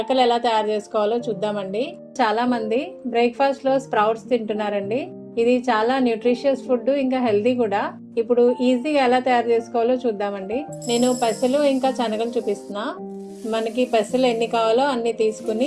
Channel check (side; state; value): both; identical; correlation 1.00